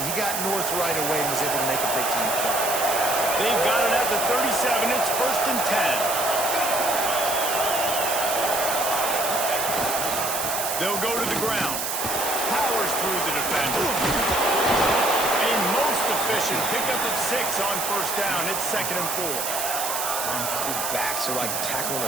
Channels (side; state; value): right; noise; hiss, 2 dB below the sound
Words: He got north right away and was able to make a big-time play. They've got it at the 37. It's 1st and 10. They'll go to the ground. Powers through the defender. A most efficient pickup of 6 on 1st down. It's 2nd and 4. These backs are like tackling